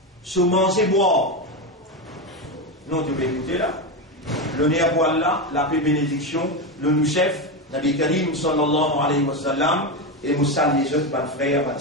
sur manger, boire. Non, tu peux écouter là. Le néerpoil là, la paix bénédiction, le nous-chef, Nabi Karim sallallahu alayhi wa sallam, et nous saluons les autres, mes frères, mes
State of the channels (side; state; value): both; normal; correlation 0.14